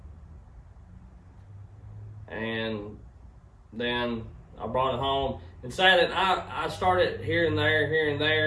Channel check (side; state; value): both; identical; correlation 1.00